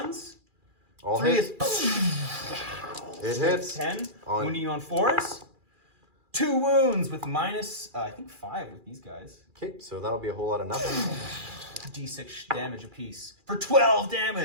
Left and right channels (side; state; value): left; late; 2.4 ms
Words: All 3 hit. is It hits. 10. Wounding you on 4s. 2 wounds with minus, I think 5 with these guys. Okay, so that'll be a whole lot of nothing. D6 damage apiece for 12